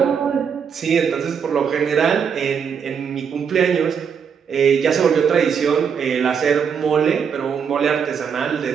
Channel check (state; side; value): quieter; left; 6.9 dB